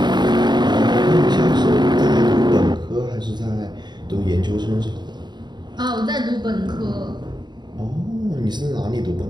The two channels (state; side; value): late; left; 0.21 ms